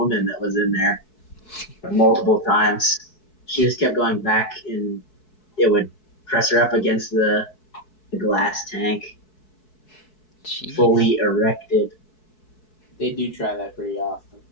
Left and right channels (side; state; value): right; late; 4.7 ms